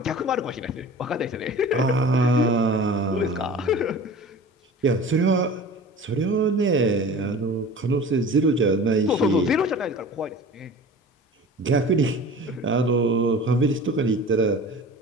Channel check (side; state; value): both; normal; correlation 0.39